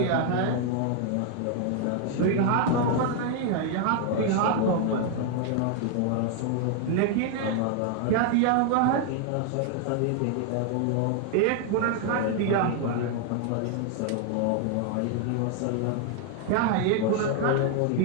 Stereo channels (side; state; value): both; different; correlation 0.00